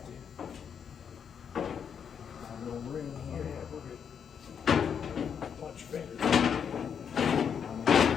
A little room here. Yeah, we're good. Punch fingers.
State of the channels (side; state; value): right; quieter; 7.4 dB